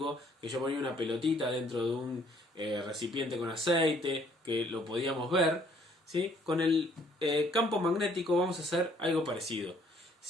que yo ponía una pelotita dentro de un recipiente con aceite, que lo podíamos ver, ¿sí? Con el campo magnético vamos a hacer algo parecido.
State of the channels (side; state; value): both; normal; correlation 0.62